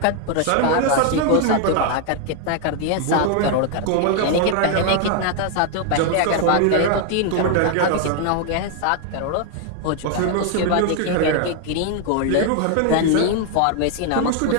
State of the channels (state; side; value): different; both; correlation 0.00